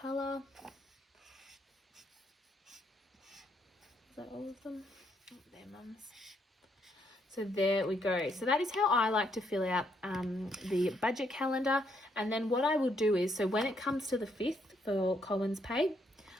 Is that all of them? Oh, they're mum's. So there we go. So that is how I like to fill out the budget calendar. And then what I will do is, so when it comes to the 5th for Colin's pay,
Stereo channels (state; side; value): normal; both; correlation 0.74